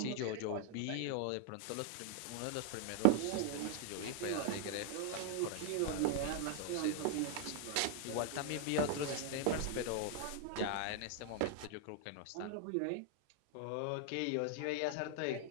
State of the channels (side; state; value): both; different; correlation 0.00